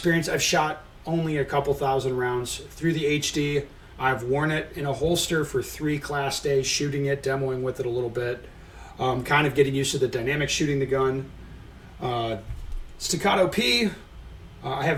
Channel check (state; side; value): identical; both; correlation 1.00